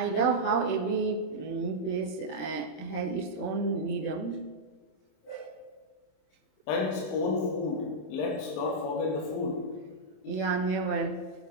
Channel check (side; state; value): right; late; 27 ms